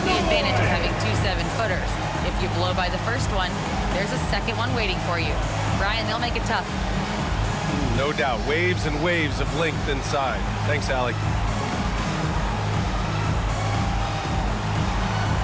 the advantage of having 2 7-footers. If you blow by the first one, there's a second one waiting for you. Brian, they'll make it tough. No doubt. Waves and waves of length inside. Thanks, Allie.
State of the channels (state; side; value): identical; both; correlation 1.00